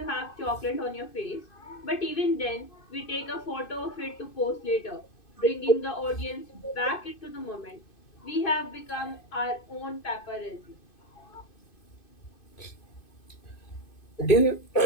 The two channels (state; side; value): late; right; 2.5 ms